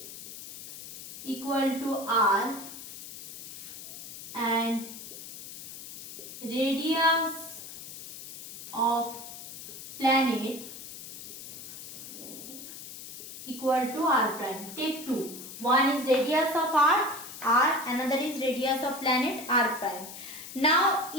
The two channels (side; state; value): left; noise; hiss, 12 dB below the sound